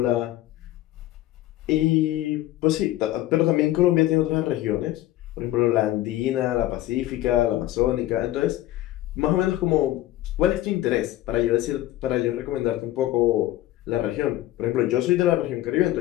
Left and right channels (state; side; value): quieter; right; 15.0 dB